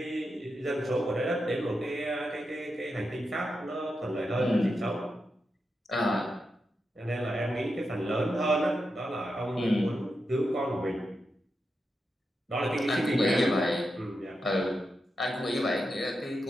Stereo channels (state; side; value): normal; both; correlation 0.87